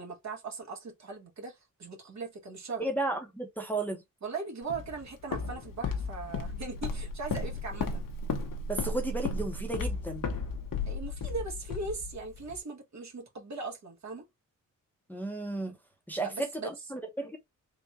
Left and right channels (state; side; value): normal; both; correlation 0.35